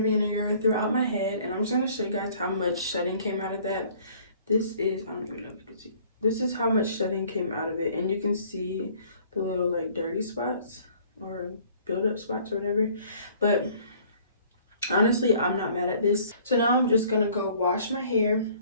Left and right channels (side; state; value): both; inverted; correlation -0.56